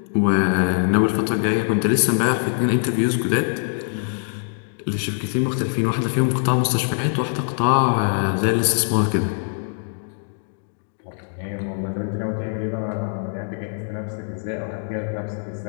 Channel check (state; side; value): silent; right; digital silence